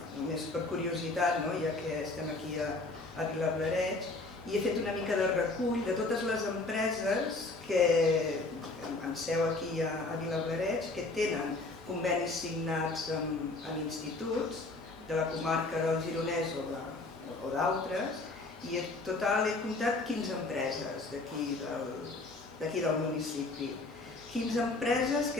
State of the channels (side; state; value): right; quieter; 3.3 dB